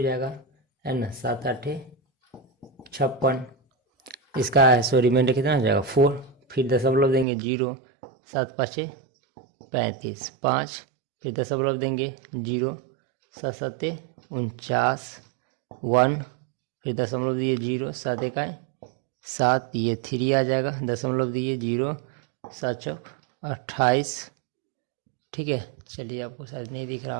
जाएगा, है ना, 7 8 56। इसका रिमाइंडर कितना हो जाएगा 4, फिर दशमलव देंगे 0, 7 5 35 5, फिर दशमलव देंगे 0, 7 7 49 1, फिर दशमलव दिए 0, 7 1 7, ये 3 आ जाएगा, दशमलव दिए 0, 7 चौक 28। ठीक है, चलिए आपको शायद नहीं दिख रहा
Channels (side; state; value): left; drops out; at 7.2 s